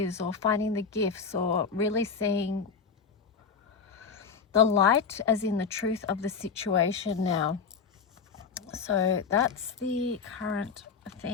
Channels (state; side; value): quieter; right; 5.7 dB